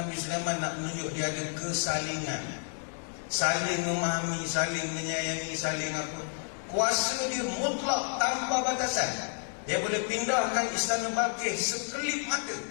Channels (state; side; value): silent; right; 57 dB below the other